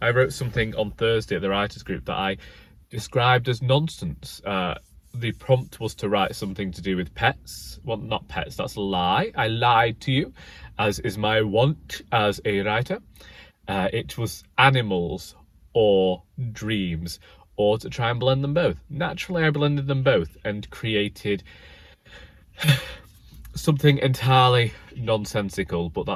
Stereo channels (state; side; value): identical; both; correlation 1.00